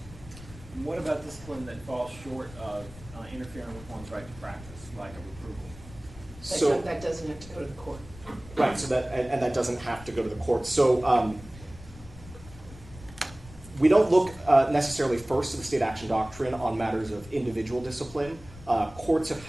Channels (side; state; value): left; noise; rumble, 18 dB below the sound